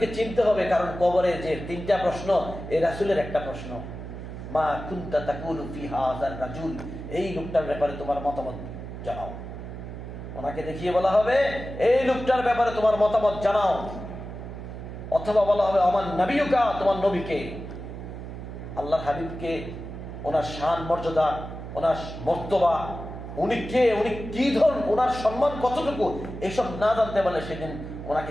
চিনতে হবে, কারণ কবরে যে 3টা প্রশ্ন, এই রাসূলের একটা প্রশ্ন, মা কুনতা তাকুলু ফি হাযার রাজুল, এই লোকটার ব্যাপারে তোমার মতামত জানাও। ওনাকে দেখিয়ে বলা হবে এই লোকটার ব্যাপারে তোমার মতামত জানাও, অথবা বলা হবে আমার নবিয়ুকা, তোমার নবীকে, আল্লাহর হাবিবকে, ওনার শান মর্যাদা, ওনার মর্তবা, উনি কে, উনি কি ধরন, ওনার সম্মান কতটুকু, এইসব না জানতে পারলে সেদিন ওনাকে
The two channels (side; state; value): right; noise; hum, 10 dB below the sound